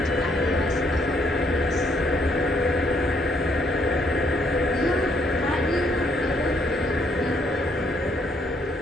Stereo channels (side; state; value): both; normal; correlation 0.70